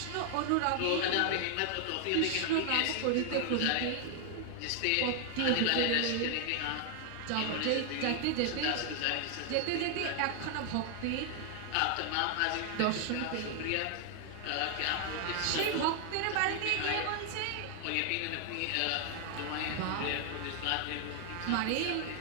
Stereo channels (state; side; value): different; both; correlation 0.00